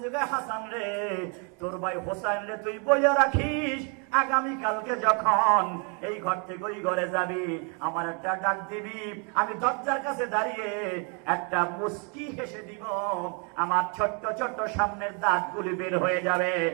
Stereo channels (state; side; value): quieter; left; 36.7 dB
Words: যুগে হাসান রে, তোর ভাই হোসেন রে তুই বইয়া রাখিস, আগামী কালকে যখন এই ঘর থেকে ওই ঘরে যাবি আমার একটা ডাক দিবি, আমি দরজার কাছে দাঁড়িয়ে একটা মুস্কি হেসে দিব, আমার ছোট্ট ছোট্ট সামনের দাঁতগুলি বের হয়ে যাবে,